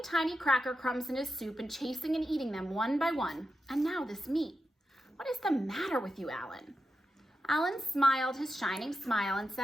tiny cracker crumbs in his soup and chasing and eating them one by one, and now this meat. What is the matter with you, Alan? Alan smiled his shining smile and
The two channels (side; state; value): both; normal; correlation 0.89